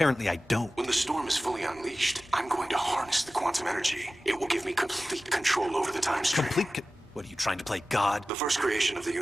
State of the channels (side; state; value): both; normal; correlation 0.96